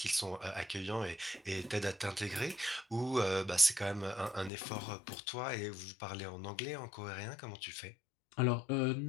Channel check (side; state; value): right; drops out; at 4.5 s